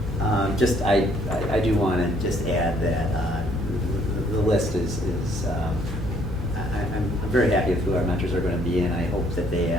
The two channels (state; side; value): normal; both; correlation 0.64